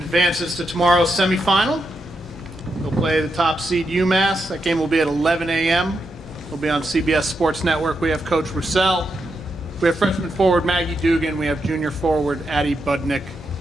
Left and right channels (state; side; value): normal; both; correlation 0.84